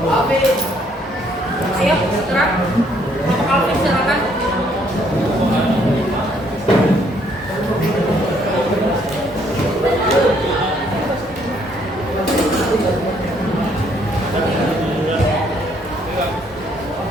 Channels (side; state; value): both; normal; correlation 0.67